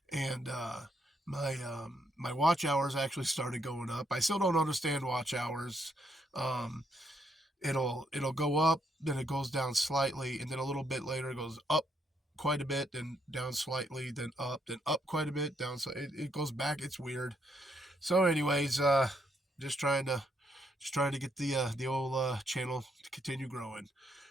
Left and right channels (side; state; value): both; normal; correlation 0.74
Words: and my watch hours actually started going up. I still don't understand watch hours. Um, it'll go up, then it goes down slightly, and then a little bit later it goes up quite a bit, then down slightly, then up quite a bit, down. So it goes back. It's weird. So, anyways, just trying to get the old channel to continue growing.